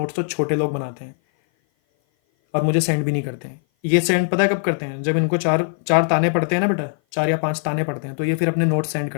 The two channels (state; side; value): silent; right; 56 dB below the other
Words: तो छोटे लोग बनाते हैं और मुझे सेंड भी नहीं करते हैं। ये सेंड पता है कब करते हैं, जब इनको चार चार ताने पड़ते हैं ना बेटा, 4 या 5 ताने पड़ते हैं, तो ये फिर अपने नोट्स सेंड